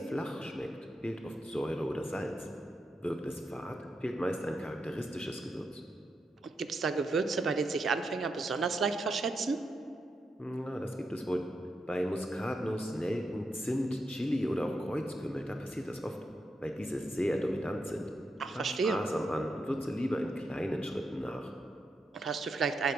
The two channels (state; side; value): normal; both; correlation 0.84